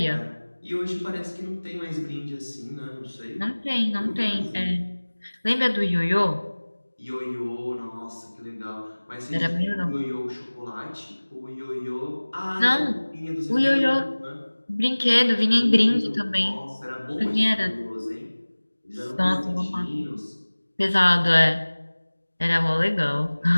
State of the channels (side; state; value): both; inverted; correlation -1.00